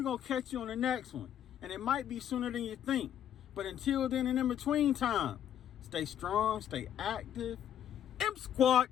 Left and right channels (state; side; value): quieter; right; 10.1 dB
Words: going to catch you on the next one. And it might be sooner than you think. But until then and in between time, stay strong, stay active. M-Squad.